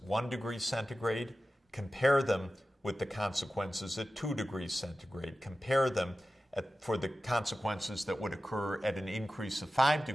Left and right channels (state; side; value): normal; both; correlation 0.95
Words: 1 degree centigrade, compare them with the consequences at 2 degrees centigrade, compare them for the consequences that would occur at an increase of 5